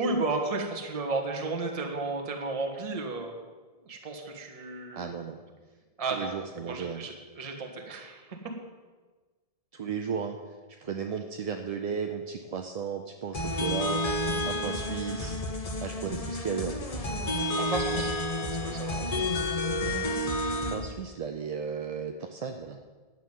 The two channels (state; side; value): late; right; 1.7 ms